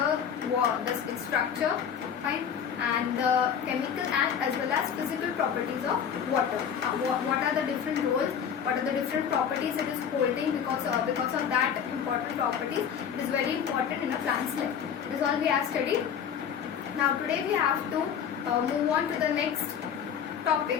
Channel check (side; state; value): right; quieter; 7.9 dB